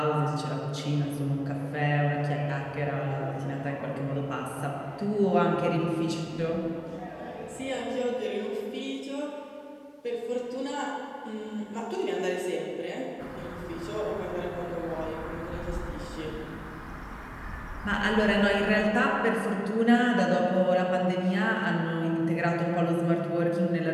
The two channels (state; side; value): identical; both; correlation 1.00